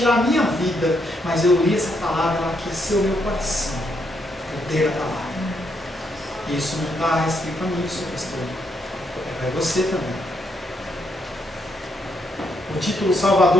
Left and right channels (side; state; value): both; normal; correlation 0.76